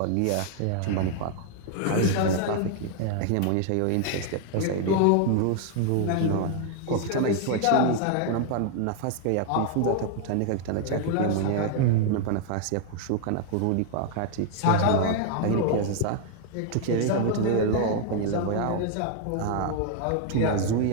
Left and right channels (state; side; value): different; both; correlation 0.00